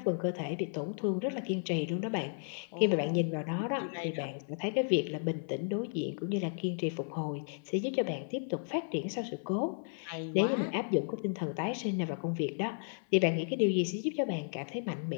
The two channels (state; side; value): silent; right; 55 dB below the other